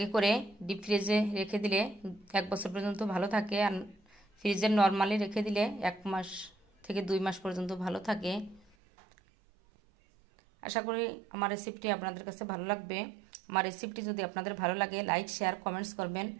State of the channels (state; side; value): drops out; left; at 8.7 s